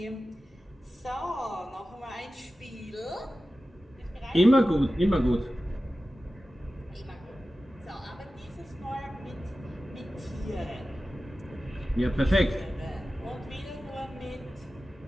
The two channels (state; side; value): normal; both; correlation 0.95